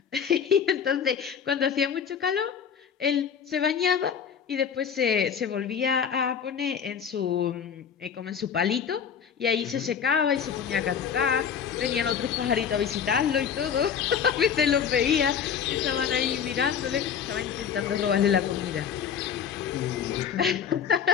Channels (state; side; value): quieter; right; 7.6 dB